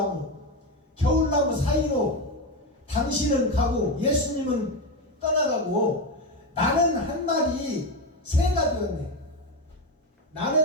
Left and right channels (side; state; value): both; normal; correlation 0.14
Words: 겨울나무 사이로 당신은 가고 예수님은 떠나가고 나는 한 마리 새가 되었네.